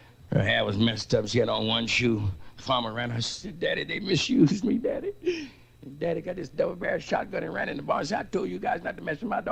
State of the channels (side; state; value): both; identical; correlation 1.00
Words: Her hair was messed up. She had on one shoe. The farmer ran her. She said, Daddy, they misused me, Daddy. And Daddy got this double-barrel shotgun and ran in the barn. He said, I told you guys not to mess with my